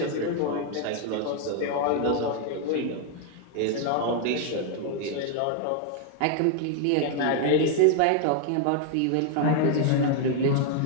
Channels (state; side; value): different; both; correlation 0.00